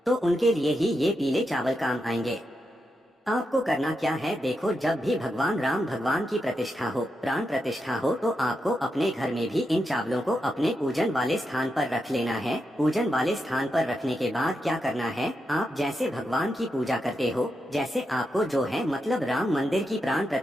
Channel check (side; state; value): both; normal; correlation 0.86